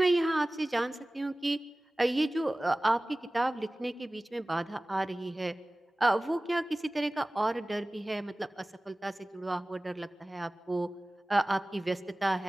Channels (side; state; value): both; normal; correlation 0.98